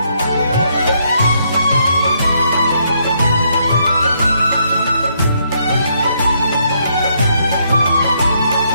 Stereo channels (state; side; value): inverted; both; correlation -0.73